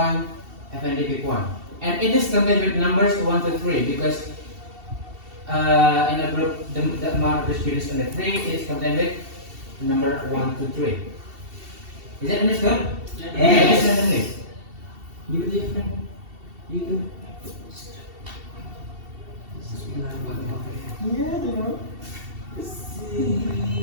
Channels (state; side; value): late; left; 2.7 ms